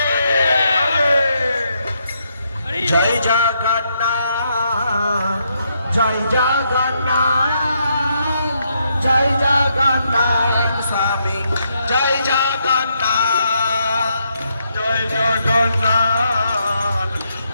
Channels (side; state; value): both; inverted; correlation -0.78